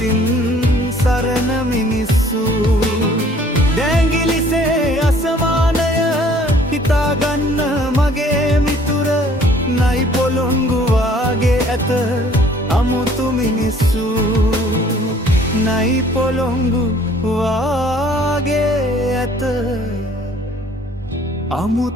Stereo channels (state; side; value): normal; both; correlation 0.56